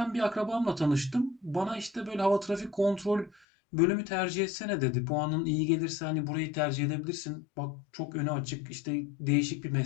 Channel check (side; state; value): right; drops out; at 3.4 s